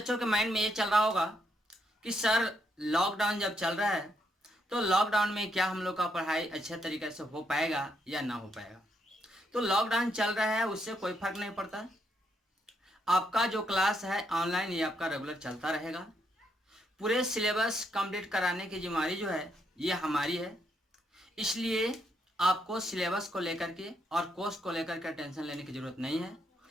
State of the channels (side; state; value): both; normal; correlation 0.77